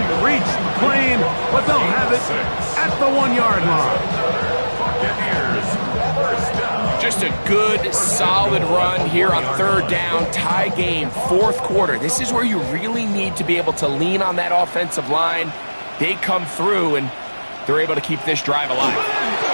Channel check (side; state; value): both; inverted; correlation -1.00